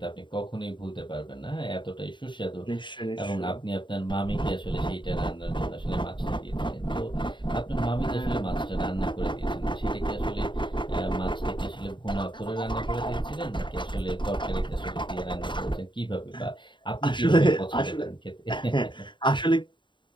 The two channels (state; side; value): late; right; 0.23 ms